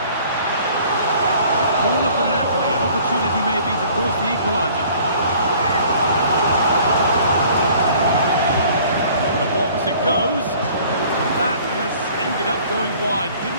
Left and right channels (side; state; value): both; inverted; correlation -0.53